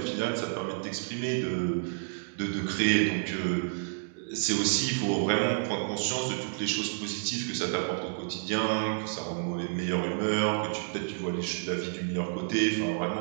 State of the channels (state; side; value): silent; left; digital silence